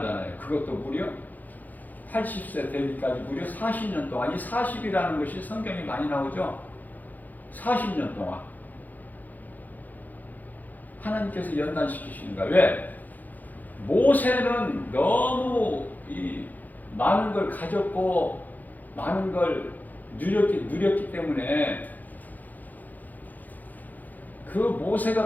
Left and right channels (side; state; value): right; late; 0.083 ms